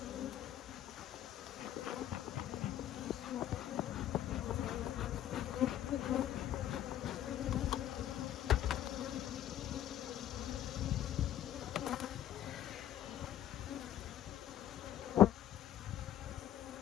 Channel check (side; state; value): right; quieter; 11.7 dB